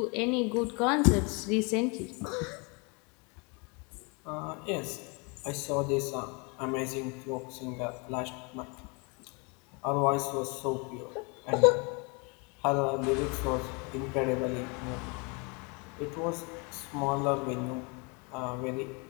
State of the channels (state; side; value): quieter; right; 31.7 dB